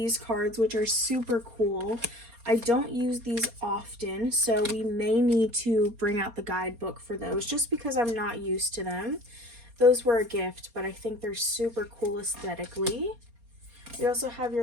cards, which are super cool. I don't use these often, so we may need to bring out the guidebook for those just because I'm not used to them. Those were a gift, but I think they're super cool aesthetically. We also have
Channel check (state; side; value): late; left; 4.2 ms